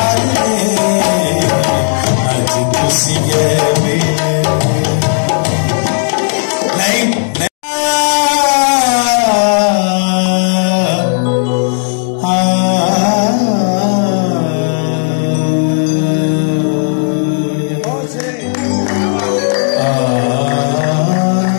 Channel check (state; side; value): silent; right; digital silence